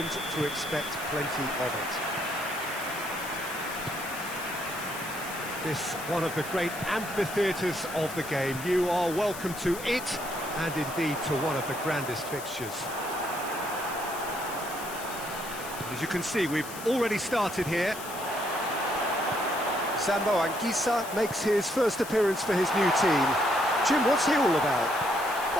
to expect plenty of it. This one of the great amphitheatres of the game. You are welcome to it, and indeed to one of the grandest fixtures. As you can see, we've already started here. Sambo Anguissa makes his first appearance for his new team. Jim, what's he all about?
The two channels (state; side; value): noise; left; hiss, 12 dB below the sound